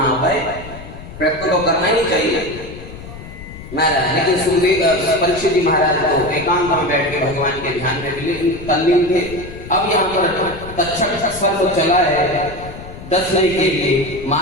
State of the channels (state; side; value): noise; left; rumble, 14 dB below the sound